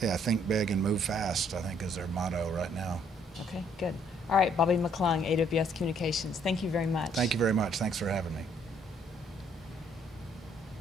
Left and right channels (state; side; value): normal; both; correlation 0.65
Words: big and move fast, I think, is their motto right now. Okay, good. All right, Bobby McClung, AWS Communications. Thank you very much. Thank you very much. Thanks for having me.